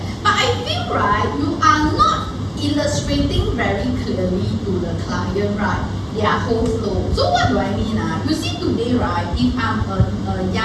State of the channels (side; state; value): both; identical; correlation 1.00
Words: but I feel right, you are not illustrating very clearly to the client, right, their whole flow. So what do I mean? You see today, right, if I'm a